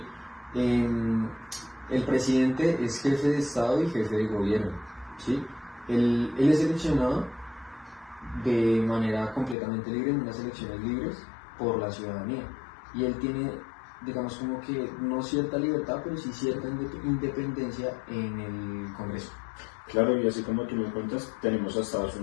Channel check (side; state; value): right; drops out; at 9.6 s